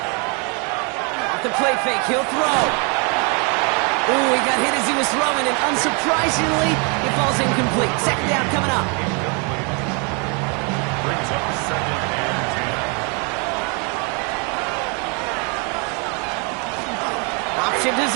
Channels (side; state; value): left; quieter; 34.7 dB